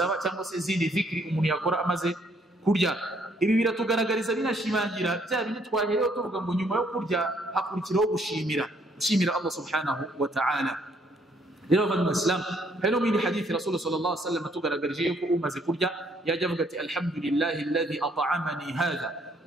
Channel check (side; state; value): both; normal; correlation 0.67